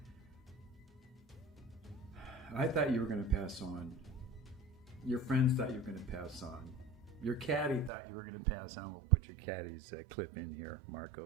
I thought you were going to pass on. Your friends thought you were going to pass on. Your caddy thought you were going to pass on. We'll put your caddy's clip in here,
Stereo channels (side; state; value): left; drops out; at 7.9 s